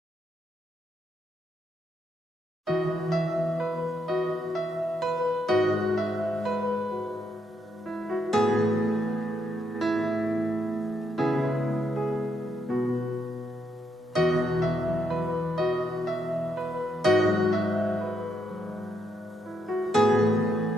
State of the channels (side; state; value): both; normal; correlation 0.78